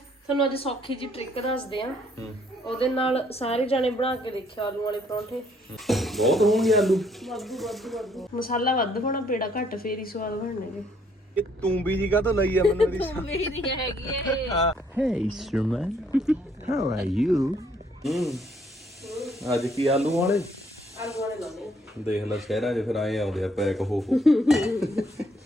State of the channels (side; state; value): both; normal; correlation 0.66